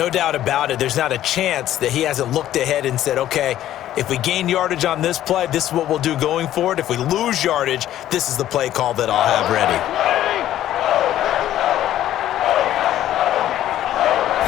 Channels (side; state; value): right; quieter; 12.6 dB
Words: doubt about it. There's not a chance that he hasn't looked ahead and said, okay, if we gain yardage on this play, this is what we'll do going forward. If we lose yardage, this is the play call that I'll have ready.